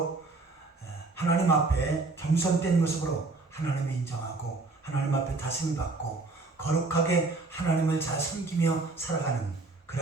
하나님 앞에 겸손된 모습으로 하나님을 인정하고 하나님 앞에 다스림을 받고 거룩하게 하나님을 잘 섬기며 살아가는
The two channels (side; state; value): left; quieter; 3.5 dB